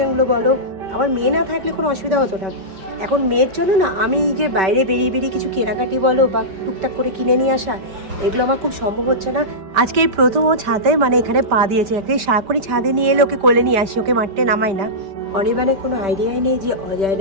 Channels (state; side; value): late; left; 5.2 ms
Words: বলো। আমার মেয়ে না থাকলে কোনো অসুবিধা হতো না। এখন মেয়ের জন্য না আমি যে বাইরে বেরিয়ে কিছু কেনাকাটি বলো বা টুকটাক করে কিনে নিয়ে আসা, এগুলো আমার খুব সম্ভব হচ্ছে না। আজকে এই প্রথম ও ছাদে মানে এখানে পা দিয়েছে। একটা সাকরি ছাদে নিয়ে এলে ওকে কোলে নিয়ে আসি, ওকে মারতে নামাই না। অনিবানের কোনো আইডিয়াই নেই যে